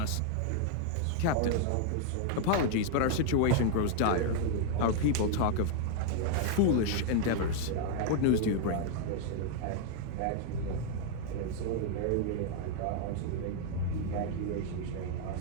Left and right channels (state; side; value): different; both; correlation 0.00